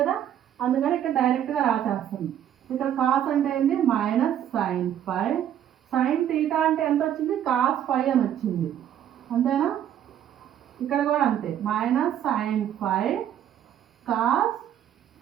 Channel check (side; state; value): left; quieter; 10.4 dB